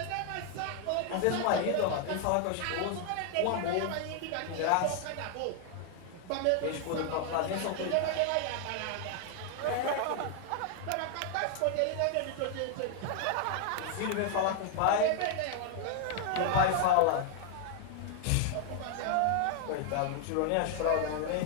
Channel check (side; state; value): both; different; correlation 0.00